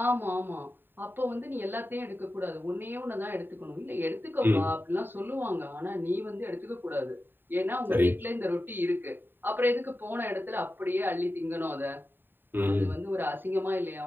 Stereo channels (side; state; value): left; late; 0.095 ms